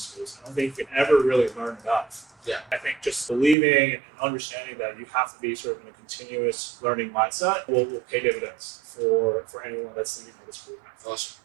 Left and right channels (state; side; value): drops out; left; at 3.6 s